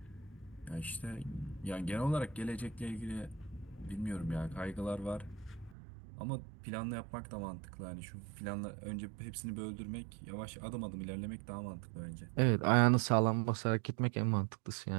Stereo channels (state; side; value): drops out; left; at 5.8 s